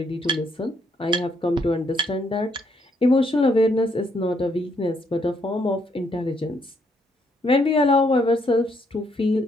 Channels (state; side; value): normal; both; correlation 0.72